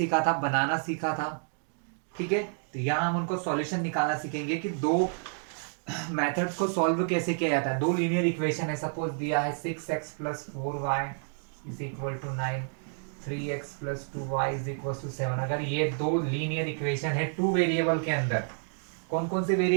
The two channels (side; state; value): left; silent; 58 dB below the other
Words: था, बनाना सीखा था। ठीक है, तो यहाँ हम उनको सॉल्यूशन निकालना सीखेंगे कि दो मेथड्स को सॉल्व कैसे किया जाता है। दो लीनियर इक्वेशन है, सपोज दिया है 6x plus 4y is equal to 9, 3x plus 2y is equal to 7। अगर ये दो लीनियर इक्वेशन है टू वेरिएबल के अंदर, कौन कौन से